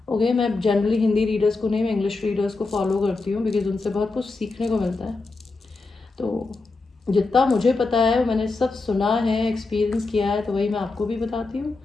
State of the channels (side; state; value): right; quieter; 3.6 dB